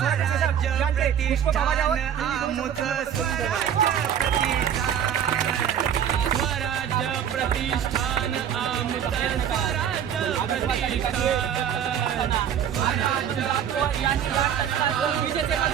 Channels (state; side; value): quieter; left; 9.0 dB